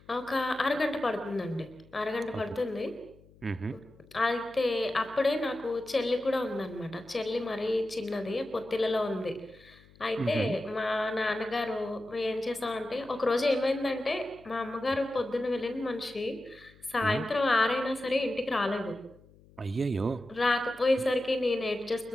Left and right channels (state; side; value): noise; left; hum, 26 dB below the sound